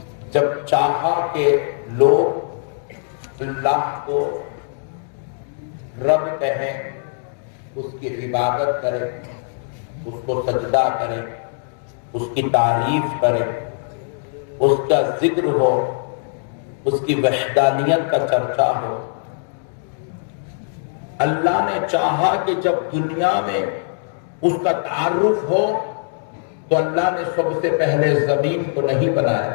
جب چاہا کہ لوگ اللہ کو رب کہیں، اس کی عبادت کرے، اس کو سجدہ کرے، اس کی تعریف کرے، اس کا ذکر ہو، اس کی وحدانیت کا چرچا ہو۔ اللہ نے چاہا کہ جب دنیا میں اس کا تعارف ہو تو اللہ نے سب سے پہلے زمین کو نہیں بنایا۔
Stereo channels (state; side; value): silent; right; digital silence